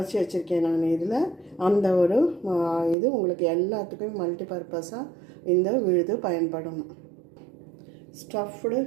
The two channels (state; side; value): drops out; left; at 3.0 s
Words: வச்சுருக்கேன் நான். இதில் அந்த ஒரு இது உங்களுக்கு எல்லாத்துக்கும் மல்டி பர்பஸாக இந்த விழுது பயன்படும். ஸ்டஃப்டு